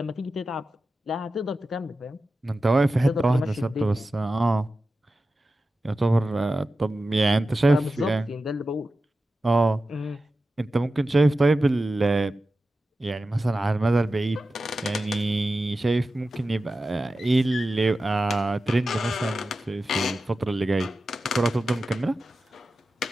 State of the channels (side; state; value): both; normal; correlation 0.93